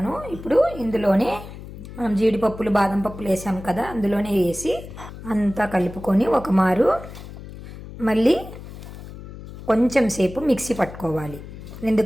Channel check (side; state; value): left; noise; hum, 13 dB below the sound